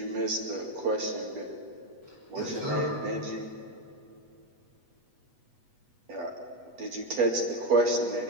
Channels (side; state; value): left; late; 8.2 ms